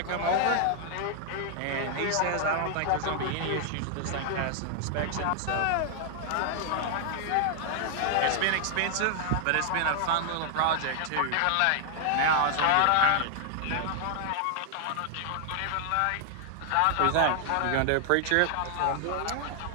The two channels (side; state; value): both; different; correlation 0.00